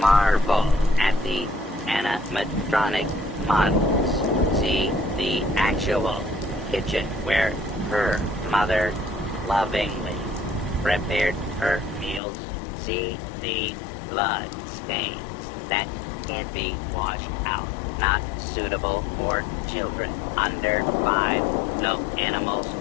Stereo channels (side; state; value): right; drops out; at 12.2 s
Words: at the animatronic models. See the actual kitchen where her mother lovingly prepared her meals. See the blood stains that can't be washed out. Not suitable for children under 5. No animals